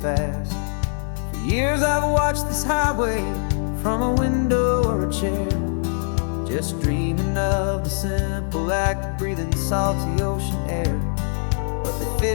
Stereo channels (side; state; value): right; silent; digital silence